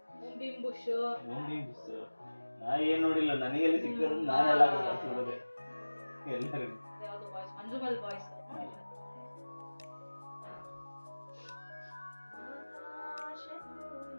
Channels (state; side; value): inverted; both; correlation -1.00